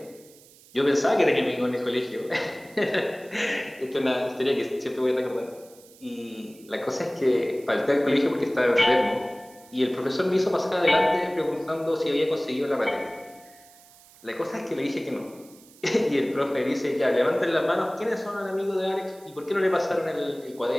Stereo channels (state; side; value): noise; right; hiss, 25 dB below the sound